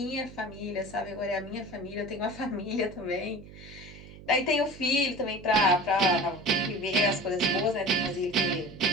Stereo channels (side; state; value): right; noise; hum, 17 dB below the sound